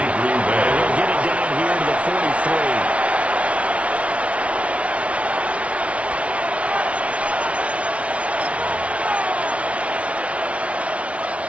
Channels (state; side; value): late; left; 0.063 ms